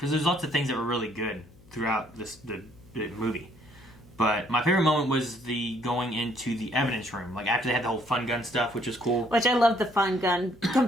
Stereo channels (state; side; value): noise; left; hum, 26 dB below the sound